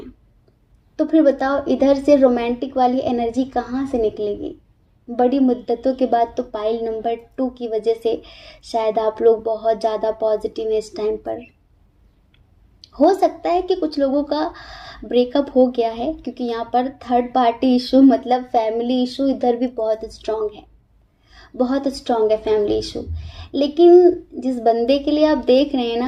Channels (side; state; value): both; identical; correlation 1.00